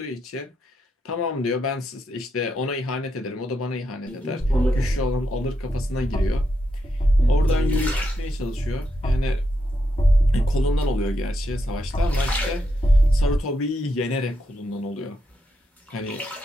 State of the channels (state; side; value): normal; both; correlation 0.82